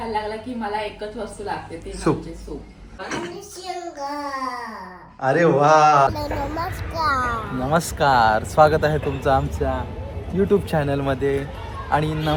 लागला की मला एकच वस्तू लागते ती सूप. म्हणजे सूप. अरे वा. नमस्कार. स्वागत आहे तुमचं आमच्या यूट्यूब चॅनलमध्ये आणि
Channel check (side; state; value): both; identical; correlation 1.00